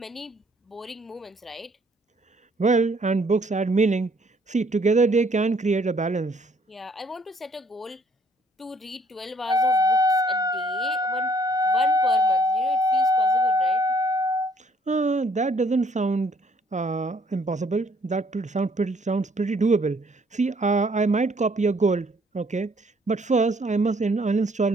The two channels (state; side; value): normal; both; correlation 0.64